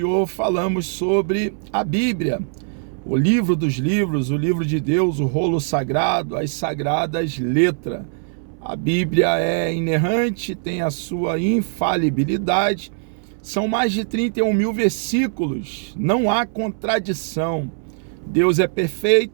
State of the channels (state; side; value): silent; left; 65 dB below the other